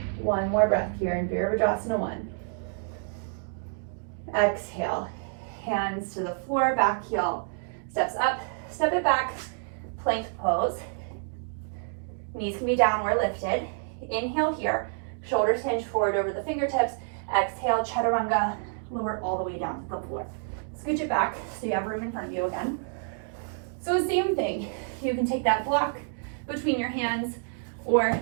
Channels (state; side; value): silent; left; digital silence